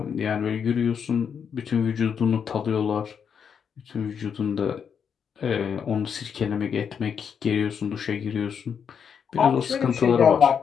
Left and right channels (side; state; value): right; quieter; 7.2 dB